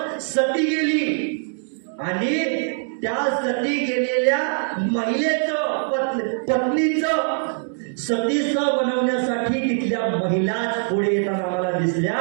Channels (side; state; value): left; silent; digital silence